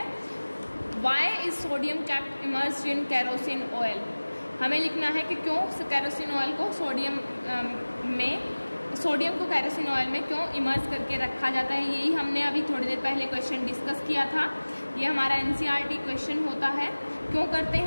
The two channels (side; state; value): both; inverted; correlation -1.00